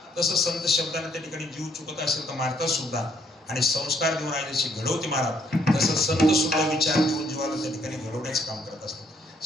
तसं संत शब्दाने त्या ठिकाणी जीव चुकत असेल तर मारतात सुद्धा. आणि संस्कार देऊन आई जशी घडवते महाराज तसं संत सुद्धा विचार देऊन जीवाला त्या ठिकाणी घडवण्याचं काम करत असतात.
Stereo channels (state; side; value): normal; both; correlation 0.68